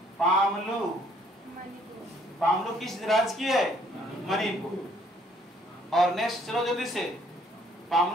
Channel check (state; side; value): normal; both; correlation 0.63